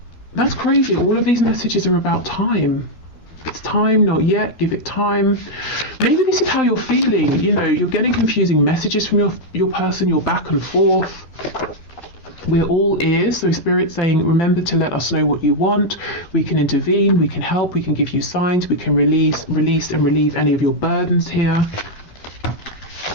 That's crazy. All of these messages are about time. It's time, not yet, give it time. Maybe this is how you're feeling. You know, you're getting confusing messages from your person, you're back and forth. We're all ears, so Spirit's saying, remember to let us know what you want. We can intervene, we can help, we can give you signs, we can release and relieve any of your burdens here.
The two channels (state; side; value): late; right; 12 ms